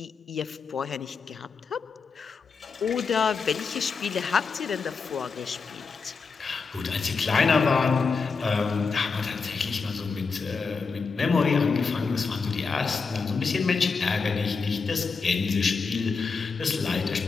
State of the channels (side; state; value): right; quieter; 4.9 dB